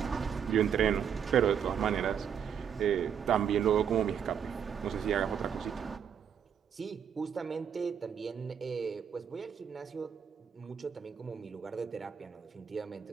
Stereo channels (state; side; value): quieter; left; 7.9 dB